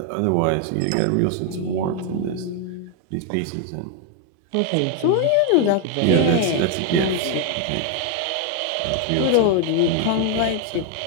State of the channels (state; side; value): different; both; correlation 0.01